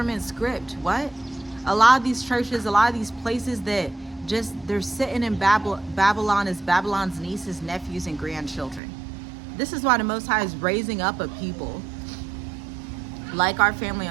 script. What? A lot of these churches, a lot of these places that they're sitting in Babylon as Babylon's nieces, nephews, and grandchildren. This is why the Most High is raising up a people like our family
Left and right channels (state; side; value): drops out; left; at 8.8 s